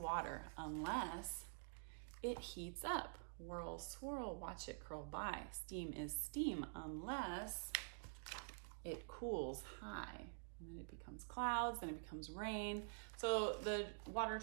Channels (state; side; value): silent; left; digital silence